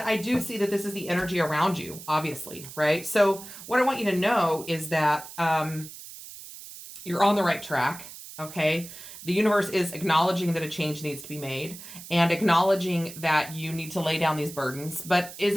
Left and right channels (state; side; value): noise; right; hiss, 14 dB below the sound